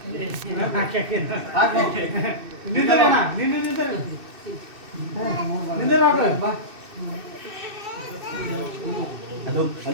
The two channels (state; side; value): late; left; 2.6 ms